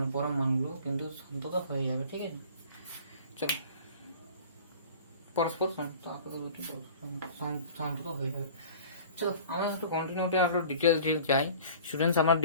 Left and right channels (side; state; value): both; inverted; correlation -0.45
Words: পরম মানগুলো কিন্তু সন্তত হয়ে যাবে। ঠিক আছে, চলো, পরস্পর সন্তত হয়ে যাবে। চলো, আমরা একটু কন্টিনিউটি আরো ডিটেলস যাই। স্টুডেন্টস, আমরা